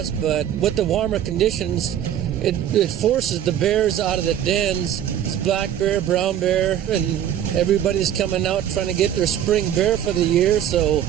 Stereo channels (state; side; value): quieter; left; 10.3 dB